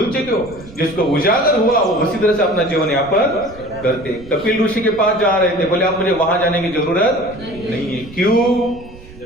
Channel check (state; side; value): noise; right; rumble, 19 dB below the sound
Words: चुके हो। जिसको उजागर हुआ वो उसी तरह से अपना जीवन यापन करते। कपिल ऋषि के पास जा रहे थे, बोले आप मुझे वहां जाने की जरूरत नहीं है। क्यों?